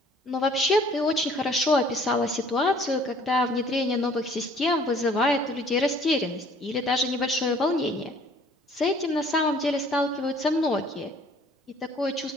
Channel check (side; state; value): both; normal; correlation 0.56